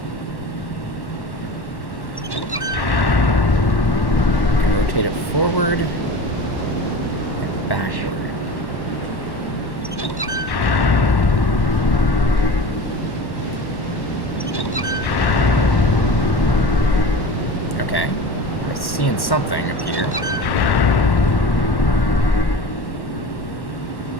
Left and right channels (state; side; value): late; right; 1.1 ms